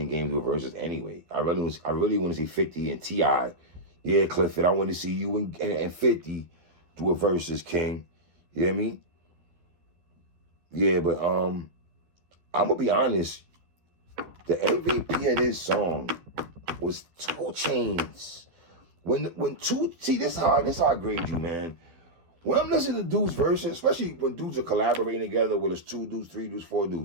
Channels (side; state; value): left; late; 12 ms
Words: Game do verses anyway. I really want to see 50 and T.I. Yeah, Clifford, I want to see you and 50 do a versus, King. You know what I mean? Yeah, but I'm gonna be honest. The MVP of this song was 2 Chainz. See, this is how I grade you, man. When I'm listening to dudes' verses, especially when dudes are collaborating together, whether it's 2 dudes, 3 dudes, 4